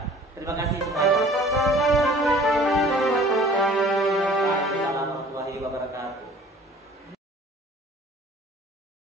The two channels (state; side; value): normal; both; correlation 0.50